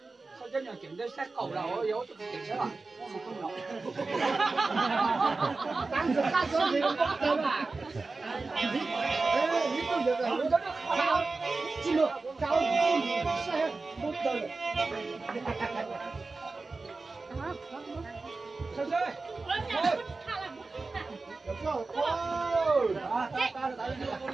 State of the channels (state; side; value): quieter; left; 3.7 dB